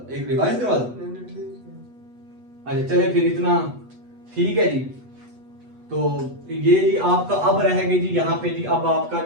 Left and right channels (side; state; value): left; late; 8.2 ms